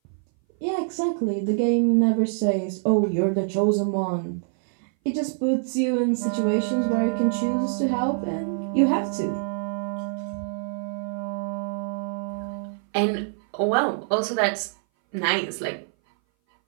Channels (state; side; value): silent; left; 59 dB below the other